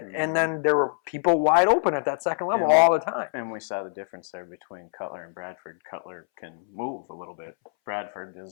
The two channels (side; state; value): right; silent; 61 dB below the other